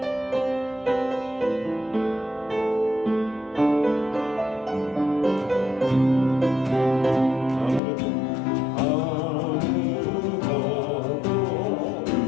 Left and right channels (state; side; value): drops out; right; at 7.8 s